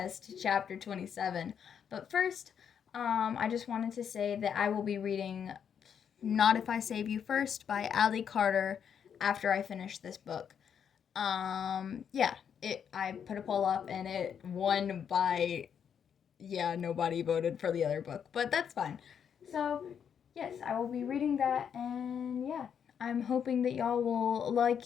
chapter 27. But first, I just wanted to say that I will be reading Not If I Save You First by Allie Carter after I finish this book. I put a poll up and it won by nobody voted for the other book, but that's fine. So, yes, I will be reading that, and I'm hoping that y'all will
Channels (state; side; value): quieter; right; 7.9 dB